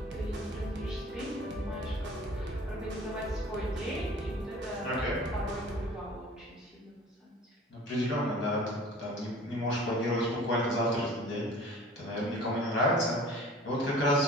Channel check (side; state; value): both; normal; correlation 0.46